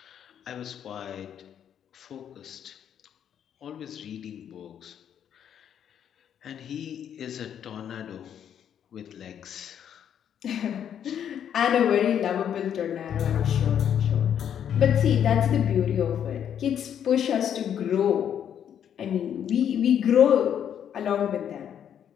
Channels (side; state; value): right; quieter; 9.1 dB